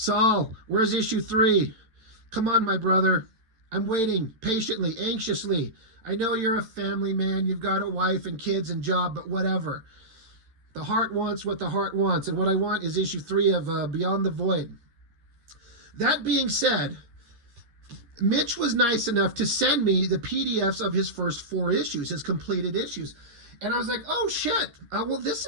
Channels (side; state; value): left; late; 13 ms